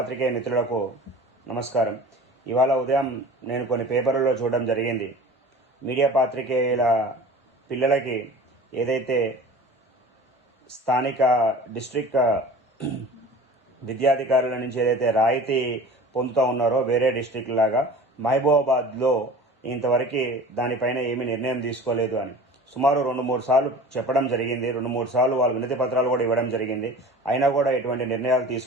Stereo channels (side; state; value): both; normal; correlation 0.40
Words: మిత్రులకు నమస్కారం. ఇవాళ ఉదయం నేను కొన్ని పేపర్లలో చూడడం జరిగింది. మీడియా పాత్రికేయుల పిల్లలకి ఏదైతే స్థానిక డిస్ట్రిక్ట్ విద్యాధికారుల నుంచి ఏదైతే రాయితీ పొందుతూ ఉన్నారో వేరే డిస్ట్రిక్ట్ లాగా మహబూబాబాద్లో ఇంతవరకు దానిపైన ఏమీ నిర్ణయం తీసుకోలేదు అని సుమారు 2-3 సార్లు చెప్పడం జరిగింది. 2-3 సార్లు వాళ్ళు వినతి పత్రాలు కూడా ఇవ్వడం జరిగింది. అయినా కూడా ఎటువంటి నిర్ణయాలు